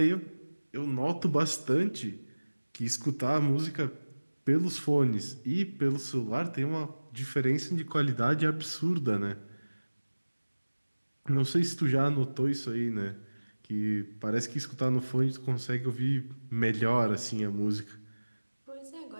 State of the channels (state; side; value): inverted; both; correlation -1.00